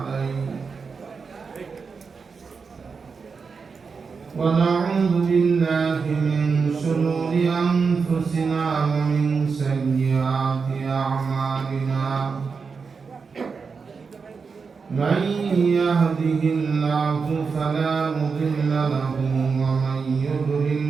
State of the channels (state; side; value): quieter; left; 5.2 dB